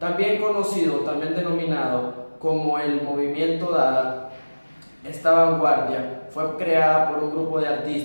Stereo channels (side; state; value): both; inverted; correlation -1.00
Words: conocido, también denominado como el movimiento Dada, esta vanguardia fue creada por un grupo de